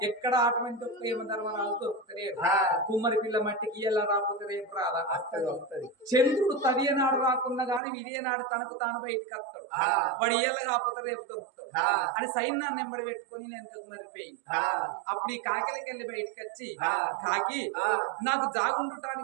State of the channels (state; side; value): drops out; left; at 7.8 s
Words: ఎక్కడ అటువంటి ఒక్క యమధర్మరాజు దొరుకుతలేడు కుమ్మరి పిల్ల మట్టికి ఎలా రాకపోతే రేపు రాదా చంద్రుడు తదియనాడు రాకున్నా గాని విజయనాడు తనకు తాను బయటికి వస్తాడు వాడు ఇయ్యల కాకపోతే రేపు దొరుకుతాడు అని సైన్యాన్ని ఎంబడి పెట్టుకొని నేను ఎంతకు మరిపోయింది అప్పుడు ఈ కాకిలకి వెళ్ళి బయటకు వచ్చి కాకి నాకు